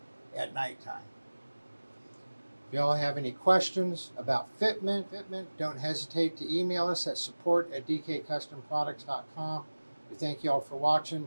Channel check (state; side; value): inverted; both; correlation -1.00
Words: at nighttime. If y'all have any questions about fitment, don't hesitate to email us at support@dkcustomproducts.com. We thank y'all for